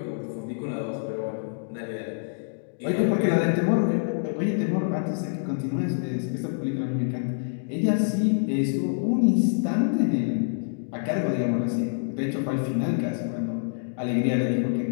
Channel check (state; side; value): silent; right; digital silence